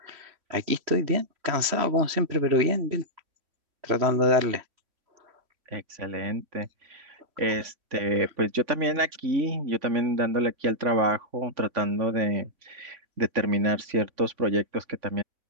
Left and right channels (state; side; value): late; left; 3.1 ms